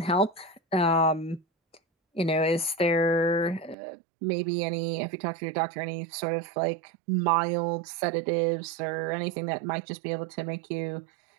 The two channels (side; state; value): left; drops out; at 3.8 s